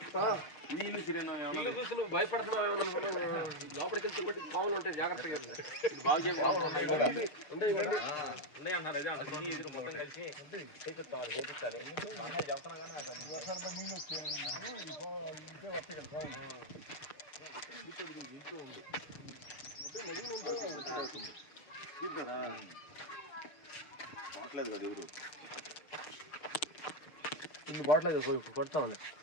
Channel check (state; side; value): late; right; 6.6 ms